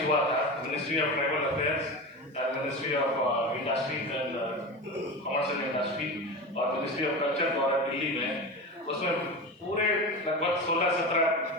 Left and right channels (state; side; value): normal; both; correlation 0.25